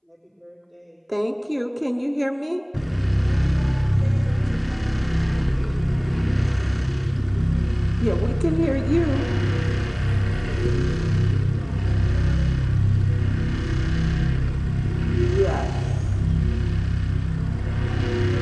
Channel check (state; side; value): identical; both; correlation 1.00